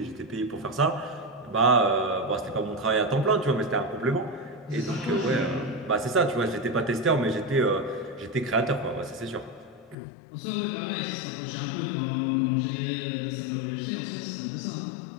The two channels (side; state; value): right; drops out; at 10.0 s